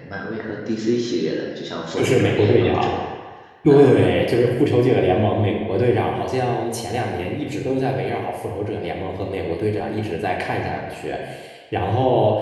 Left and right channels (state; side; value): identical; both; correlation 1.00